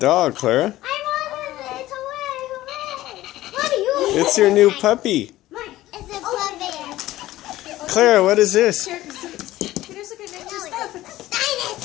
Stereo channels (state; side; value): quieter; right; 15.8 dB